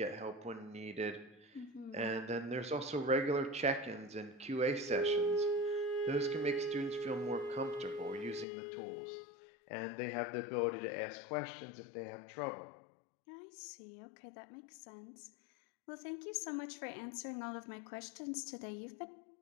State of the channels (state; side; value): drops out; right; at 8.5 s